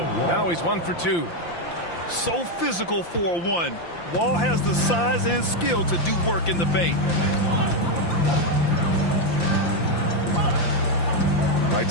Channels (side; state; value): right; late; 5.8 ms